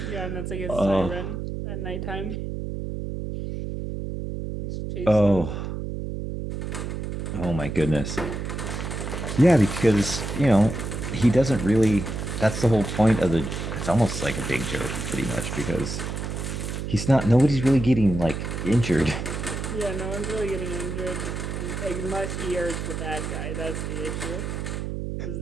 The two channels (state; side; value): noise; right; hum, 5 dB below the sound